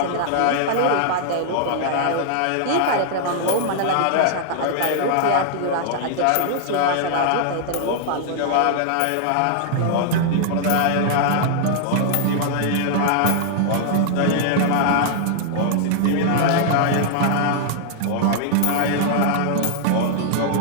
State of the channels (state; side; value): different; both; correlation -0.01